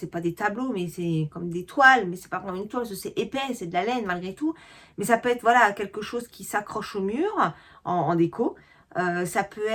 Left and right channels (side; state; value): both; identical; correlation 1.00